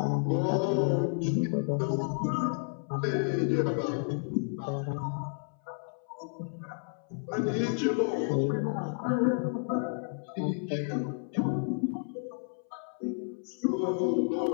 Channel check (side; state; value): right; silent; 57 dB below the other